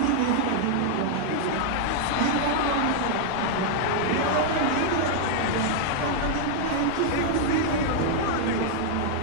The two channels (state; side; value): different; both; correlation -0.01